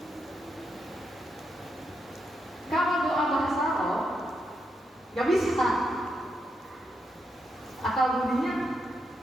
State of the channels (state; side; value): normal; both; correlation 0.82